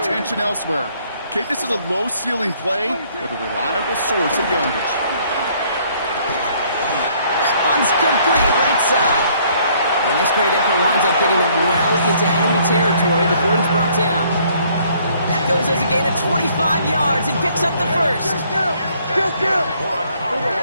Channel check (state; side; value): inverted; both; correlation -0.63